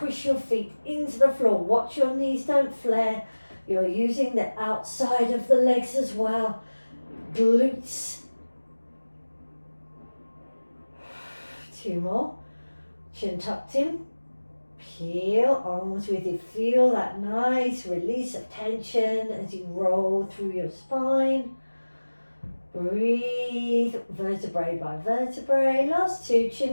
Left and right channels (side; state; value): both; inverted; correlation -1.00